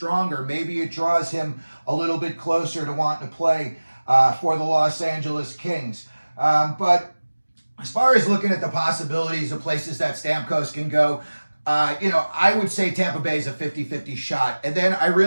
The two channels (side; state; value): both; inverted; correlation -1.00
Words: Maybe it draws him a little bit closer to wanting to play for the Los Angeles Kings. But as far as looking at the possibilities of places that Stamkos can go, I would say Tampa Bay is a 50-50 shot. And then I